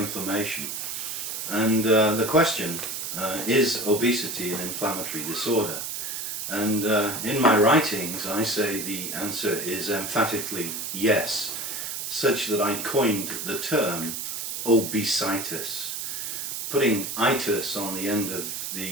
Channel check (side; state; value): right; noise; hiss, 4 dB below the sound